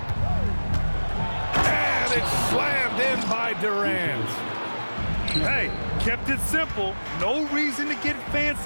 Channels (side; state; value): both; inverted; correlation -1.00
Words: And it's slammed in by Durant. Hey, kept it simple. No reason to get